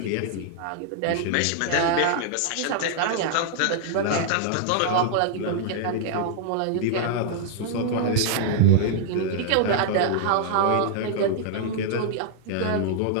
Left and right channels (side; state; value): both; different; correlation -0.01